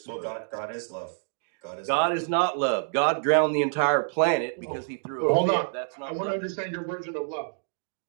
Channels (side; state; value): left; silent; digital silence